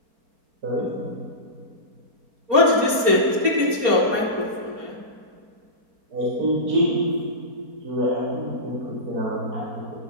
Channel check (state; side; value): late; left; 4.2 ms